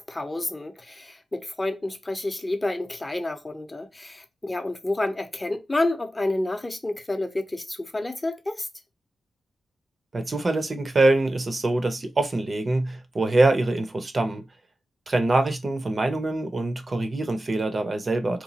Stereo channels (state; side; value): normal; both; correlation 0.94